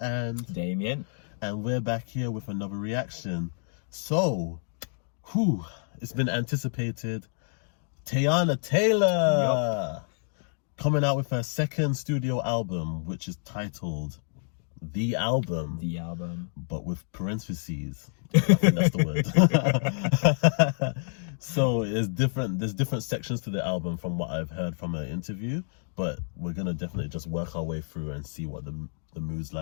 and Damien, and we're back here with another reaction. So, it's been anticipated. Teyana Taylor coming out with her second studio album, which is titled The Album. The Album. But with parentheses. I think that's the word. So there's different sections to the album from what I've heard from her interview, but we're gonna definitely just work our way through and see what the mood's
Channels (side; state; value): right; silent; 59 dB below the other